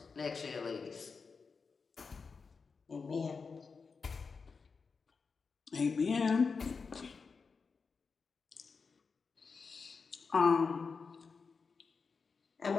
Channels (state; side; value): quieter; right; 5.0 dB